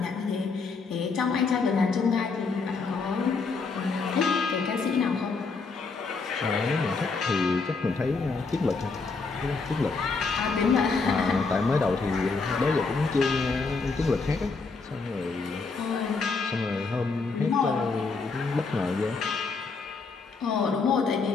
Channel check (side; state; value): right; quieter; 4.4 dB